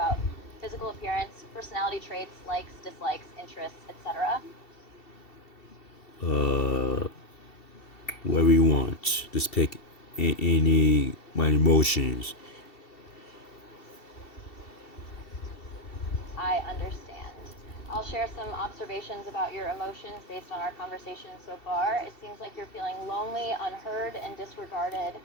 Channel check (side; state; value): right; late; 2.7 ms